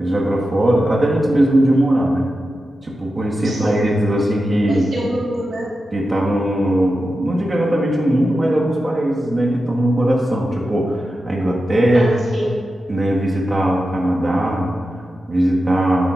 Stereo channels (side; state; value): both; normal; correlation 0.91